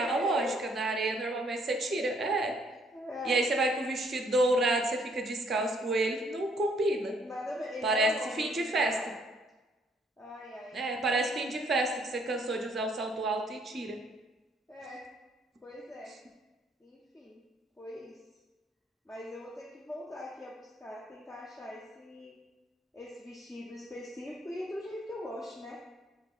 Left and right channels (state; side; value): normal; both; correlation 0.66